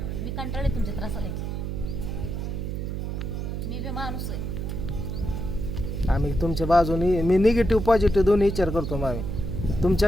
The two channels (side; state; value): right; noise; hum, 3 dB below the sound